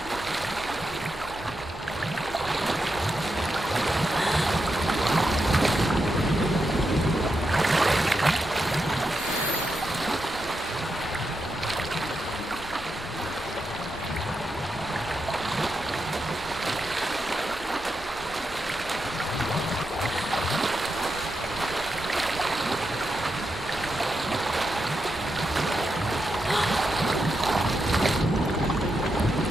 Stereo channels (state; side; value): normal; both; correlation 0.86